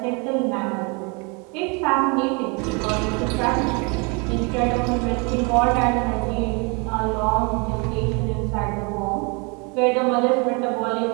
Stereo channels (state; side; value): quieter; left; 31.8 dB